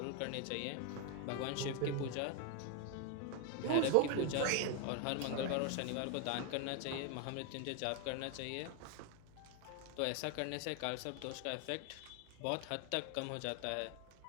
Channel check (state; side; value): different; both; correlation 0.01